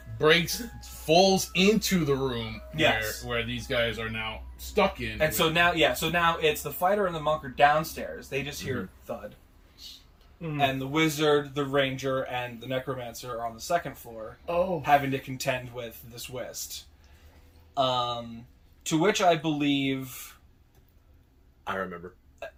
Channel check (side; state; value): both; identical; correlation 1.00